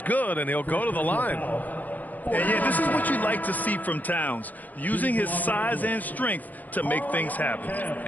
good, and he'll go to the line. And yeah, this is what you like to see from Towns, using his size and strength to make things happen.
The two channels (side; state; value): right; late; 0.081 ms